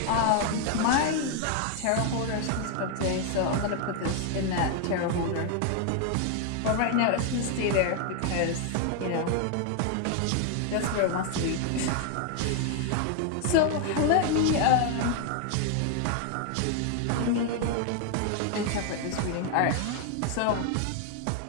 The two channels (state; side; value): different; both; correlation 0.00